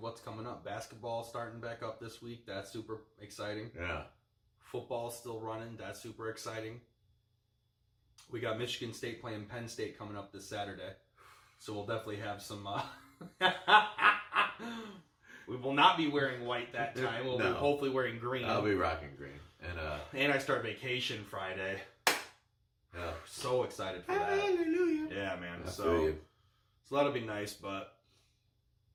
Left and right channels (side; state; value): both; identical; correlation 1.00